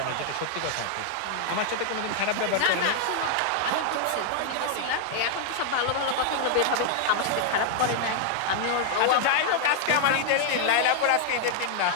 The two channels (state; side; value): different; both; correlation -0.01